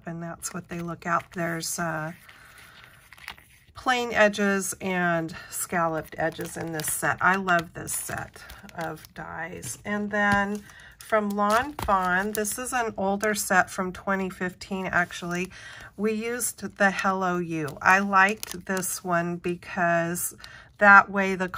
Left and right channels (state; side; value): identical; both; correlation 1.00